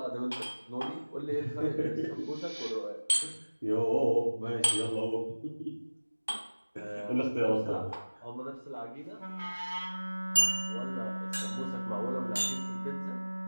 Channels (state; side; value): inverted; both; correlation -1.00